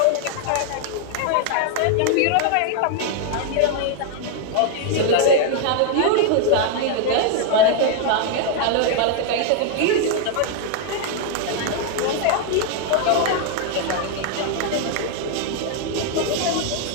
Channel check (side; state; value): both; different; correlation 0.00